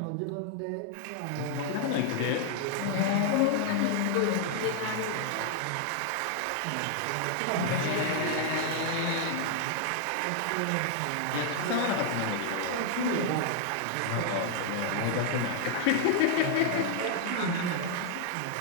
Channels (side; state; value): both; different; correlation 0.00